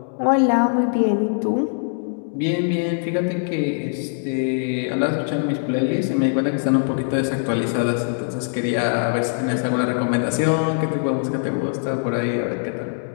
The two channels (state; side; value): silent; right; digital silence